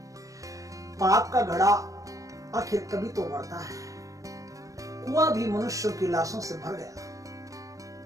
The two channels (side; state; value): left; late; 0.16 ms